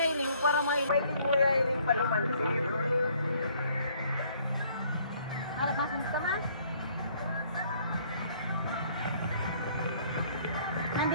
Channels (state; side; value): inverted; both; correlation -0.61